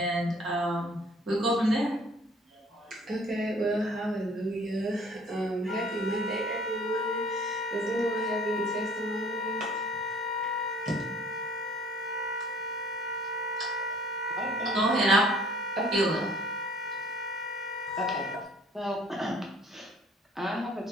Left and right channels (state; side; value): normal; both; correlation 0.54